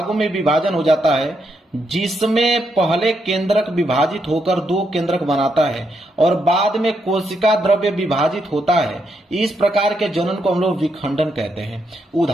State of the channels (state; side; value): normal; both; correlation 0.79